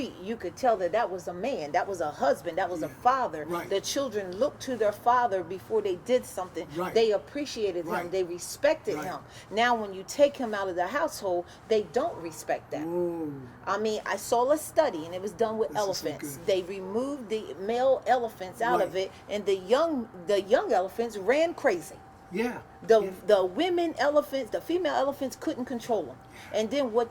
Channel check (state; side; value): identical; both; correlation 1.00